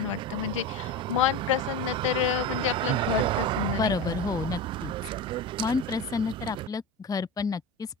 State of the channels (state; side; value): normal; both; correlation 0.25